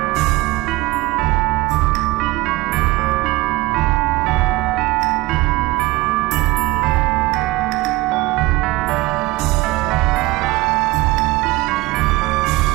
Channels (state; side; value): quieter; left; 20.2 dB